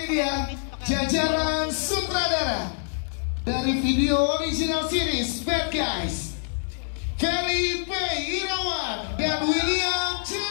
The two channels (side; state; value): right; silent; 61 dB below the other